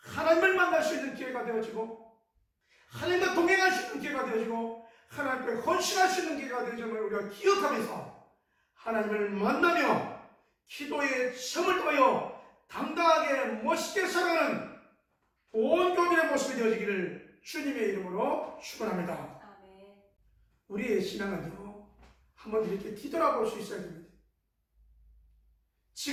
만날 수 있는 기회가 되어지고, 하나님과 동행할 수 있는 기회가 되어지고, 하나님께 헌신할 수 있는 기회가 되어짐을 우리가 기억하면서 하나님을 만나며 기도의 시험을 통하여 당당하게 멋있게 살아가는 온 교민의 모습이 되어지기를 주님의 이름으로 축원합니다. 아멘. 우리의 신앙은요, 한번 이렇게 뒤돌아볼 수 있어야 됩니다.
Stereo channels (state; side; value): identical; both; correlation 1.00